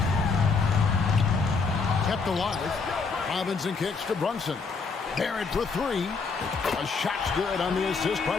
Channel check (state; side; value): quieter; right; 4.7 dB